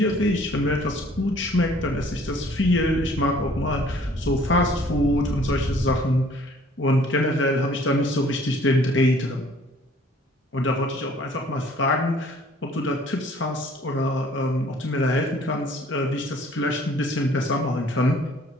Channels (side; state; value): both; normal; correlation 0.56